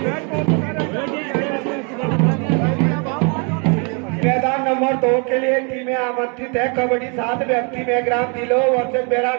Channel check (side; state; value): left; quieter; 35.9 dB